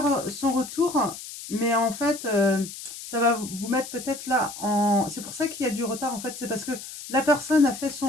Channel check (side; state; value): left; noise; hiss, 12 dB below the sound